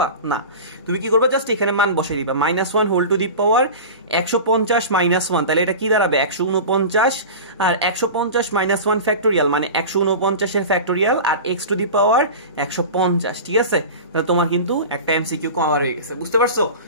না, তুমি কি করবা জাস্ট এখানে মান বসাই দিবা -1 হোল টু দি পাওয়ার 150 -1, তাহলে এটা কি দাঁড়াবে 149, আর 150 -1 ফ্যাক্টোরিয়াল মানে 149 এর ফ্যাক্টোরিয়াল, আর x টু দি পাওয়ার 150, ঠিক আছে। তাহলে তোমার কিন্তু একটা এমসিকিউ কভার হয়ে গেছে, বুঝতে পারছো।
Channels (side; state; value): both; inverted; correlation -0.32